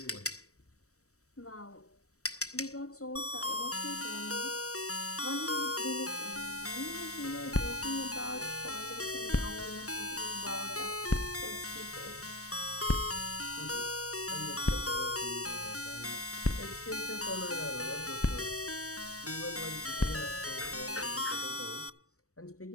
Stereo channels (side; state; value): right; late; 0.65 ms